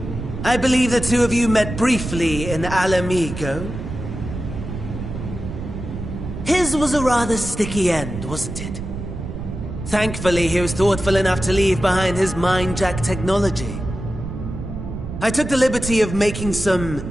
I believe the two of you met briefly in Alamigo. His was a rather sticky end, wasn't it? Thankfully, he was thoughtful enough to leave behind his mind-jack technology. I took the liberty of making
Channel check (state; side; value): noise; right; rumble, 8 dB below the sound